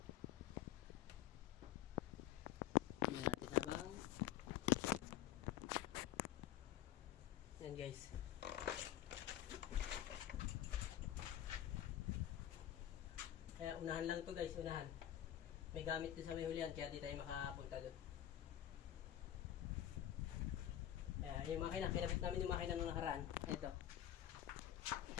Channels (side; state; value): right; quieter; 12.0 dB